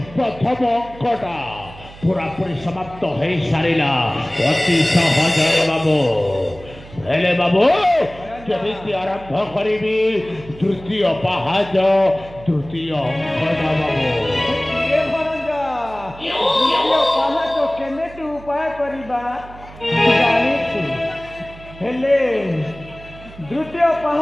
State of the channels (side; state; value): right; noise; hum, 18 dB below the sound